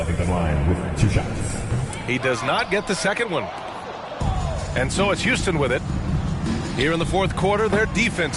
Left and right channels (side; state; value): both; identical; correlation 1.00